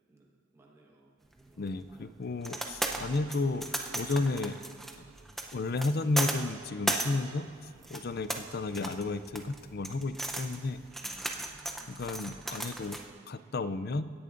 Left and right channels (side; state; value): both; normal; correlation 0.67